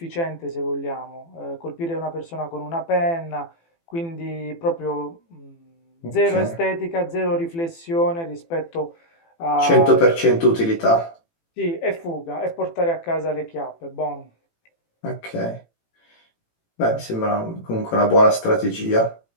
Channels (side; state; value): right; late; 18 ms